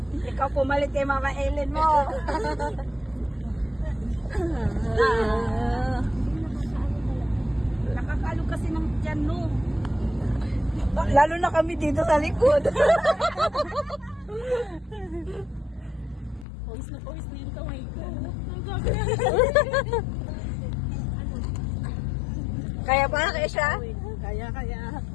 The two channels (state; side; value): drops out; right; at 16.4 s